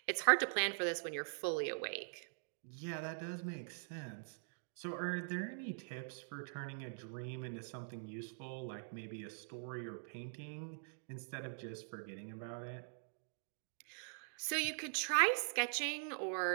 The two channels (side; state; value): left; silent; digital silence